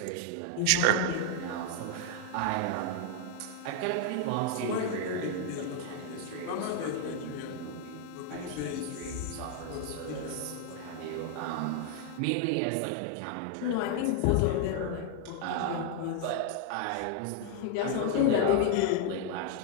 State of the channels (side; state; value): both; different; correlation 0.00